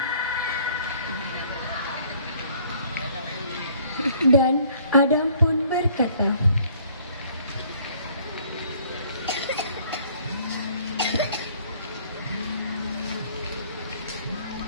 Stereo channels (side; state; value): both; inverted; correlation -0.58